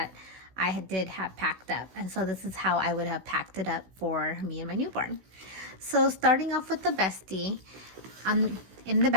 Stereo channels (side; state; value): left; late; 16 ms